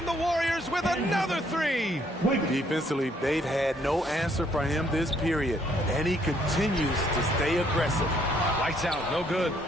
the Warriors with another three. Defensively, they've had no answer for him this period, and he continues to stay aggressive. Lights out, no good.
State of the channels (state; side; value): normal; both; correlation 0.67